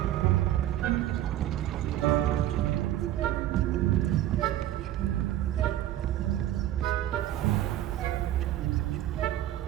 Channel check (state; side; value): quieter; left; 13.1 dB